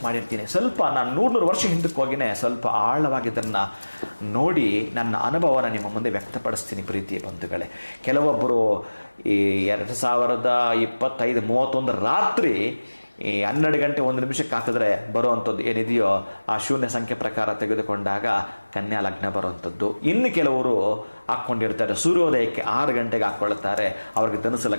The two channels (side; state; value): both; inverted; correlation -1.00